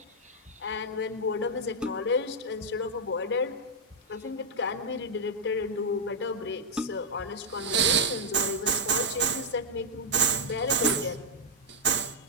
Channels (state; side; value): normal; both; correlation -0.05